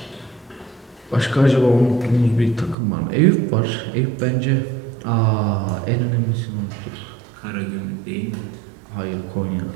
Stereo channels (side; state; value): left; drops out; at 2.8 s